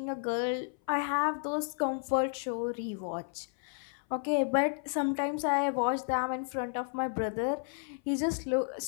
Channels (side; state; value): right; silent; 56 dB below the other